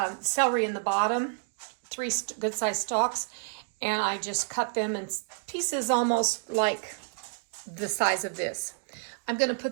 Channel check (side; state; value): left; silent; digital silence